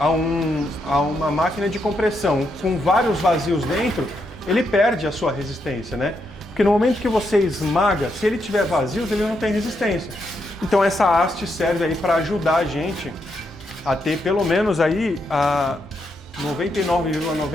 uma máquina de compressão com vários vazios dentro, ele perde a sua resistência, né? Porque no momento que você esmaga, se ele tiver vazios, ele não tem resistência. Então essa haste serve aí para ajudar a gente a ter pelo menos aí a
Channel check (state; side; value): normal; both; correlation 0.80